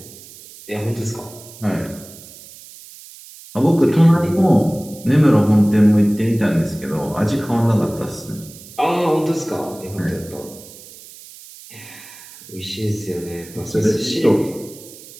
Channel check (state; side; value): noise; right; hiss, 19 dB below the sound